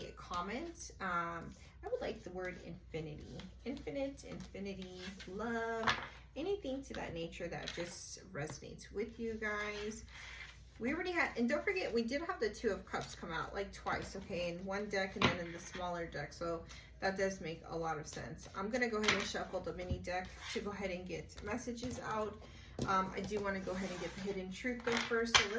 comment. I would like the word infinity, infinity, love, anything to that nature that just resonates with you guys. We already had, and don't forget, we did have the Two of Cups come out like twice, okay, in one deck and then in the smaller deck, so that does make a lot of sense. I'm going to go ahead and shuffle the mini deck to go ahead and get messages out. I do want to go ahead and get the hidden truth though first, so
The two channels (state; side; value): identical; both; correlation 1.00